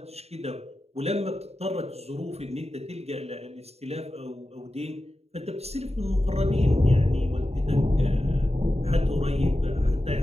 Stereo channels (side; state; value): left; late; 0.30 ms